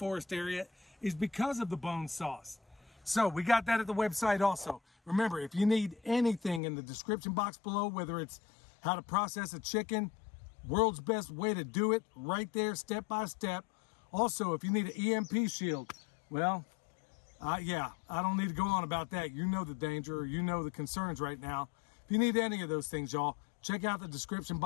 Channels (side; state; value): right; drops out; at 6.6 s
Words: area is because of the bone sauce. So we got that at the website also. Remember, if you need anything in the description box below, whether it's how to process a chicken, world's best way to do it, right there, step by step. Also, if you need an EMP shield, well, yeah, I don't need to go on about that. You know the danger, or you know the concerns right now. If you need any of those things, y'all, check out the description